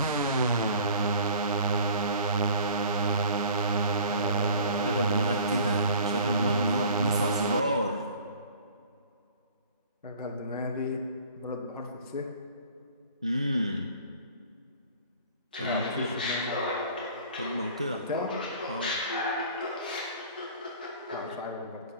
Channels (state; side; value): inverted; both; correlation -0.47